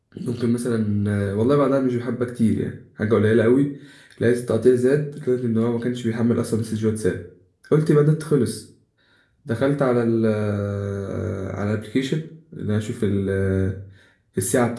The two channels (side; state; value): both; identical; correlation 1.00